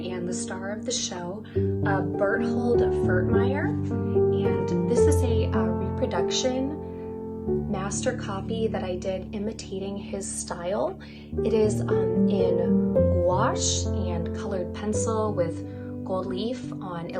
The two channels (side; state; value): both; identical; correlation 1.00